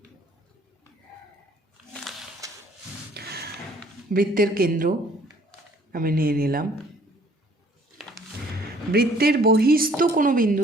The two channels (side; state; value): both; normal; correlation 0.59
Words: বৃত্তের কেন্দ্র আমি নিয়ে নিলাম। বৃত্তের বহিস্থ কোনো